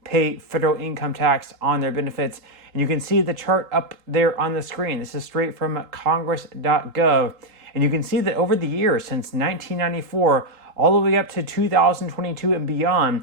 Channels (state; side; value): late; left; 3.7 ms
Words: pay federal income tax on their benefits. And you can see the chart up there on the screen. This is straight from congress.gov. And you can see that over the years, since 1994, all the way up to 2022 and beyond,